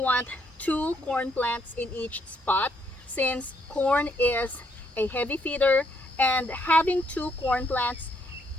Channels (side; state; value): both; normal; correlation 0.72